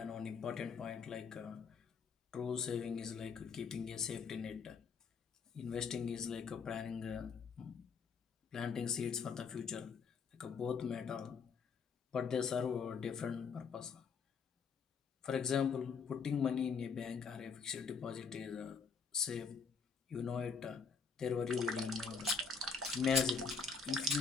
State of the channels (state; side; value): quieter; right; 5.4 dB